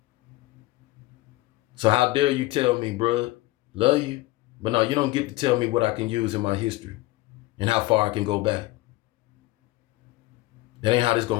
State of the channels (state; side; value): quieter; right; 19.4 dB